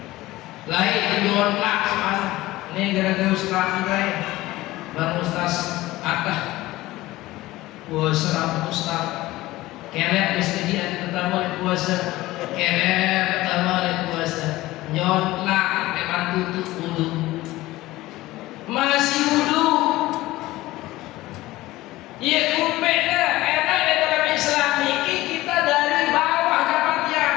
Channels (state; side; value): quieter; right; 17.8 dB